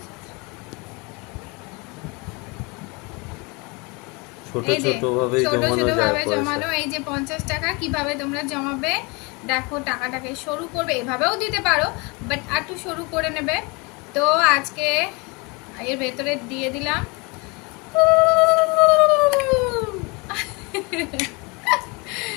ছোট এই যে ছোট ভাবেই ছোট জমানো ছোট যায় ভাবে পয়সা। জমানো। এই যে 50 টাকা কিভাবে তোমরা জমাবে দেখো, টাকাটাকে সরু করবে, এভাবেও দিতে পারো, বাট একটু সরু করে নেবে। তো আজকে এর ভেতরে দিয়ে দিলাম।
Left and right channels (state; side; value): quieter; right; 28.3 dB